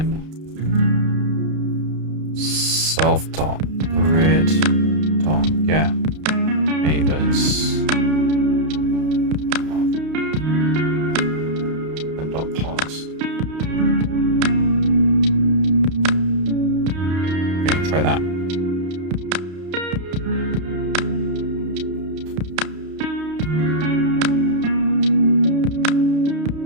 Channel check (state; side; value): late; left; 32 ms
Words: self.grid.get neighbors and .pause. Okay, try that.